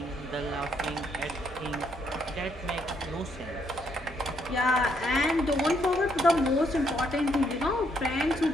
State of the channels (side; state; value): both; normal; correlation 0.72